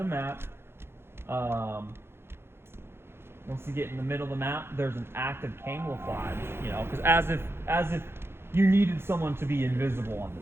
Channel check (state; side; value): late; left; 0.12 ms